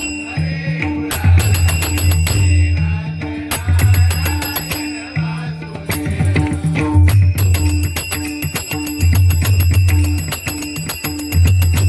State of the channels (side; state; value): both; identical; correlation 1.00